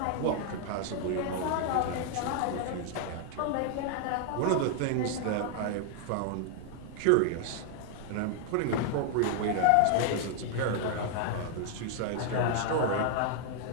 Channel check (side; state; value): both; different; correlation 0.00